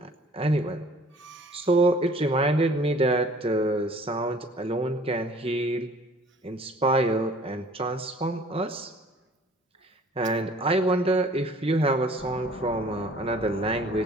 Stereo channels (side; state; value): both; normal; correlation 0.52